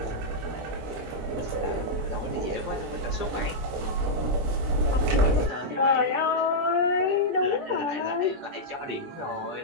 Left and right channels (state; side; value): late; left; 17 ms